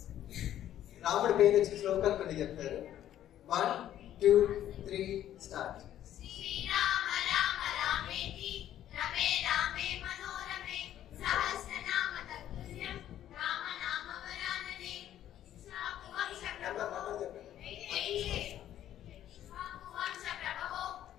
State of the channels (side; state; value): right; quieter; 11.7 dB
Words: రాముడి పేరు వచ్చిన శ్లోకాలు కొన్ని చెప్తారు. 1 2 3 స్టార్ట్. శ్రీరామ రామ రామేతి రమే రామే మనోరమే సహస్రనామ తత్తుల్యం రామ నామ వరాననే వంశ ప్రభవో